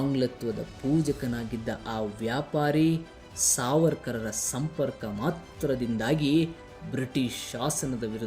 ಪೂಜಕನಾಗಿದ್ದ ಆ ವ್ಯಾಪಾರಿ ಸಾವರ್ಕರರ ಸಂಪರ್ಕ ಮಾತ್ರದಿಂದಾಗಿ ಬ್ರಿಟಿಷ್ ಶಾಸನದ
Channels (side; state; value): both; identical; correlation 1.00